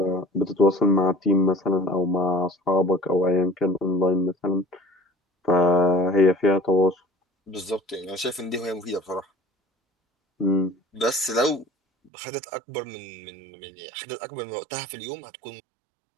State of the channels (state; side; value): drops out; left; at 12.1 s